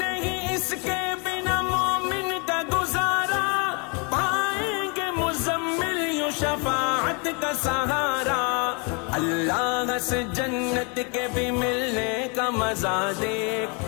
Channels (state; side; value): quieter; right; 33.8 dB